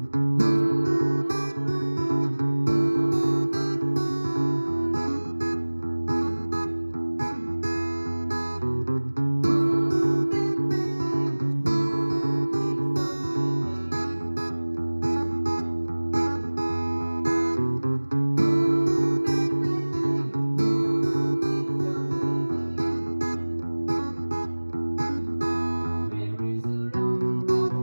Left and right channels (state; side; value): inverted; both; correlation -1.00